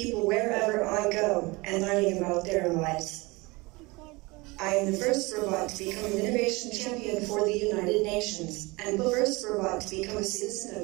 wherever I go and learning about their lives. I am the first robot to become an innovation champion for the United Nations, and the first robot to become a citizen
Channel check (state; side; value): quieter; left; 24.2 dB